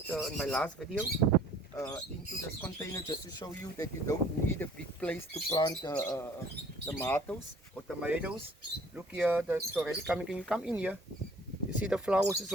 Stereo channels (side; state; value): both; normal; correlation 0.54